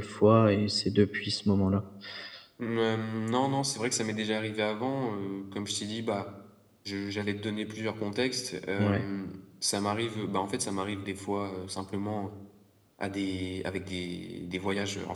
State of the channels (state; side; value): identical; both; correlation 1.00